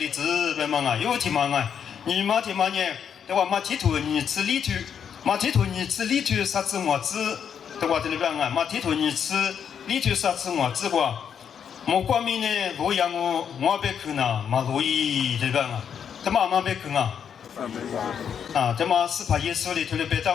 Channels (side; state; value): right; quieter; 7.8 dB